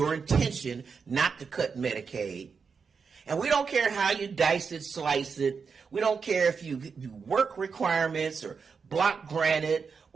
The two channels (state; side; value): quieter; left; 5.6 dB